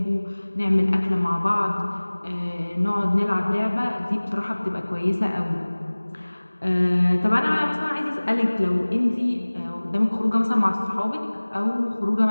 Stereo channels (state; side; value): inverted; both; correlation -1.00